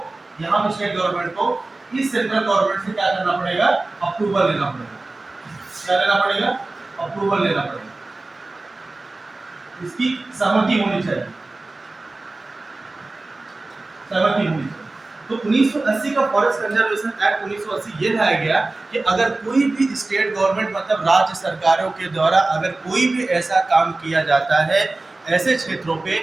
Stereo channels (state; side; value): quieter; left; 3.1 dB